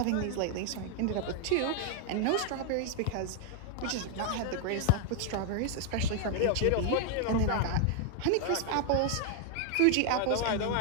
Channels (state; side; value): different; both; correlation 0.00